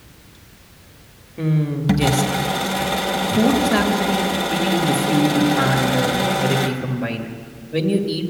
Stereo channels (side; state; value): both; identical; correlation 1.00